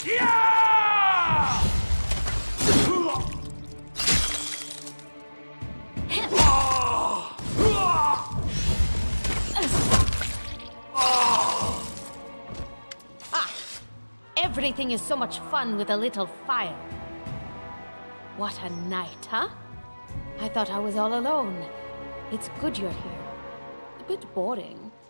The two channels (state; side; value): inverted; both; correlation -1.00